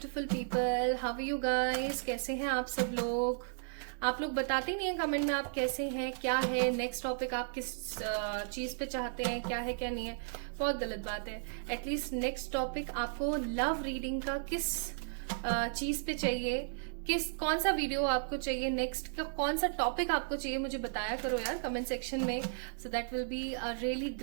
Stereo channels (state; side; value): silent; left; digital silence